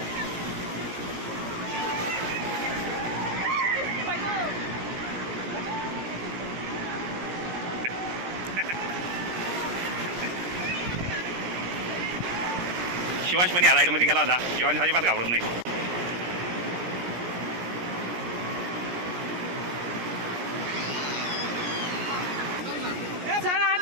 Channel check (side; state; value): left; late; 17 ms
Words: शिवांश पण या राईडमध्ये गेला होता. शिवांश अजिबात घाबरत नाही. चला